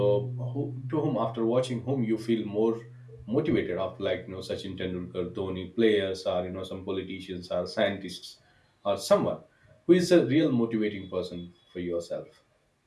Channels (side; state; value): both; identical; correlation 1.00